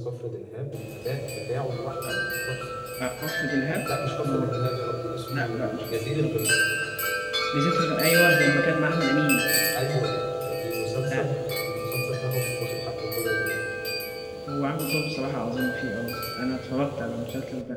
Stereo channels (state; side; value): identical; both; correlation 1.00